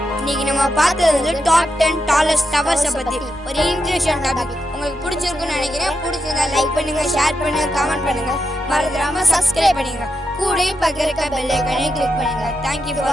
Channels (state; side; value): normal; both; correlation 0.85